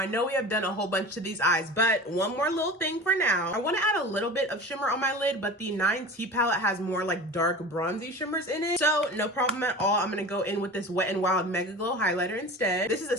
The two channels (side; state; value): both; normal; correlation 0.35